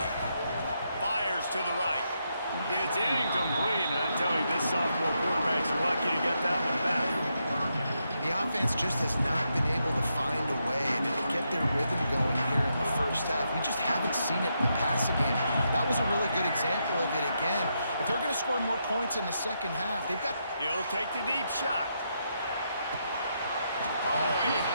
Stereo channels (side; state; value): both; inverted; correlation -0.81